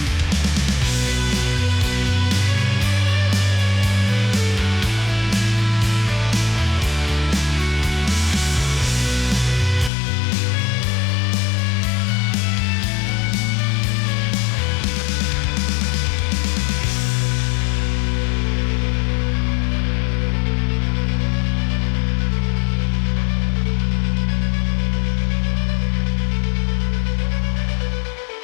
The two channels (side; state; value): right; drops out; at 9.9 s